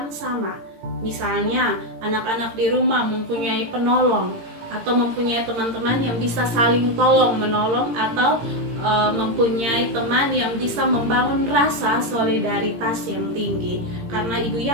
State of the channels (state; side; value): late; left; 17 ms